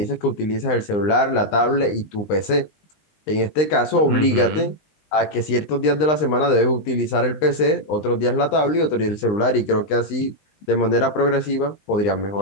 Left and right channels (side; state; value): right; late; 19 ms